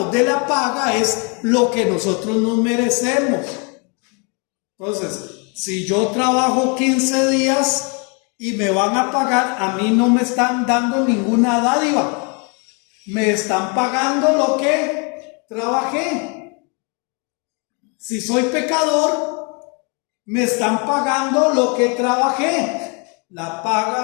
de la paga es lo que nosotros nos merecemos. Entonces, si yo trabajo 15 días y me van a pagar, a mí no me están dando ninguna dádiva. Me están pagando lo que trabajé. Si soy pecador, me están pagando lo que trabajé. La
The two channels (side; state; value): right; quieter; 34.4 dB